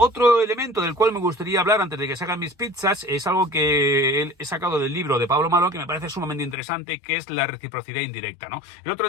elemento del cual me gustaría hablar antes de que se hagan mis pizzas es algo que he sacado del libro de Pablo Malo, que me parece sumamente interesante, que es la reciprocidad indirecta, ¿no? El otro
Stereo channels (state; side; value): drops out; right; at 6.6 s